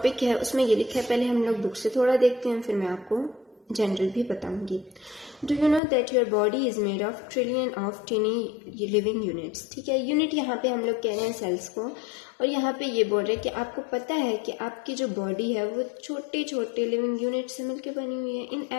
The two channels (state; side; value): drops out; right; at 5.8 s